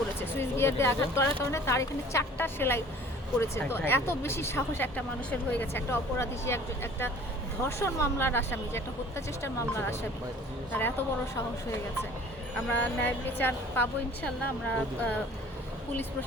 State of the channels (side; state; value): both; normal; correlation 0.49